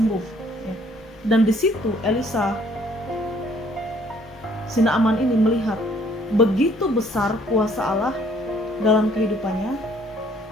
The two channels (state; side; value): normal; both; correlation 0.61